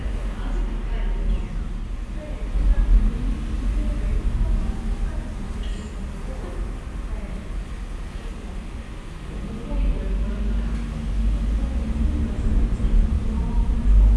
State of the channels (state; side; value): identical; both; correlation 1.00